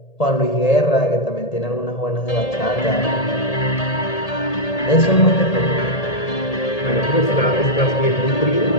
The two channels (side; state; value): right; late; 1.8 ms